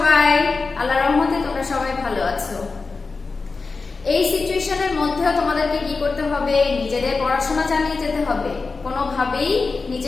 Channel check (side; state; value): right; quieter; 4.2 dB